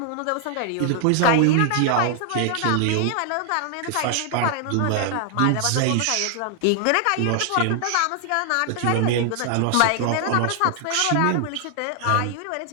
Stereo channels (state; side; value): different; both; correlation 0.00